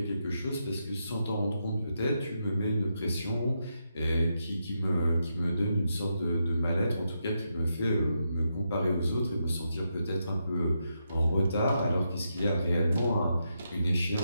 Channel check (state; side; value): inverted; both; correlation -0.83